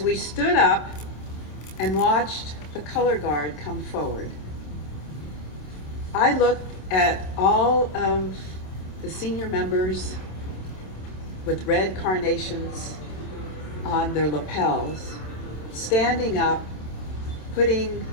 we stood up and watched the color guard come forward, I looked at all of the senior members with red carnations on their lapels, standing up, putting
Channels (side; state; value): right; late; 26 ms